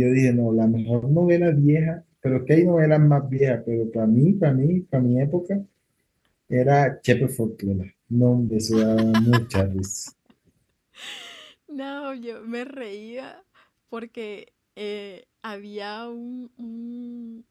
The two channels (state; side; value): identical; both; correlation 1.00